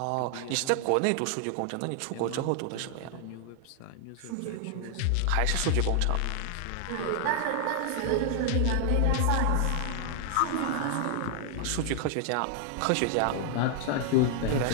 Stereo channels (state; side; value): different; both; correlation 0.00